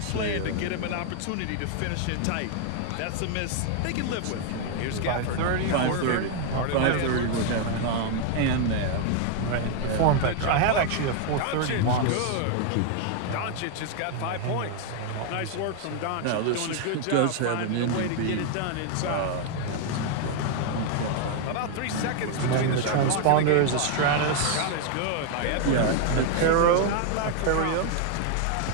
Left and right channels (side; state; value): both; different; correlation 0.00